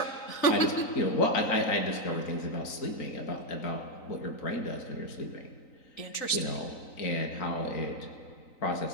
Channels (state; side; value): late; right; 3.9 ms